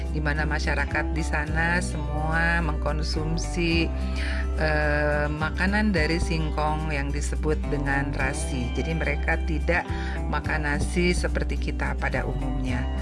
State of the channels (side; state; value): both; identical; correlation 1.00